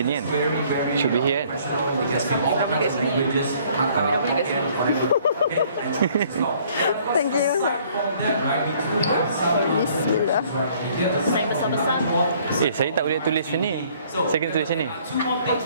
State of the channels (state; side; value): inverted; both; correlation -0.59